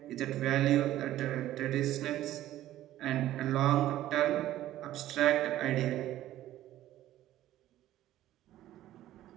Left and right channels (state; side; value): quieter; left; 13.8 dB